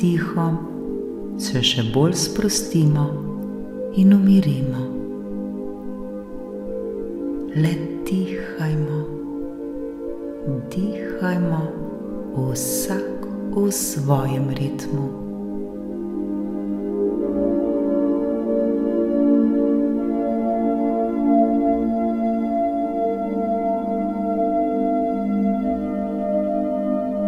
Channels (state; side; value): identical; both; correlation 1.00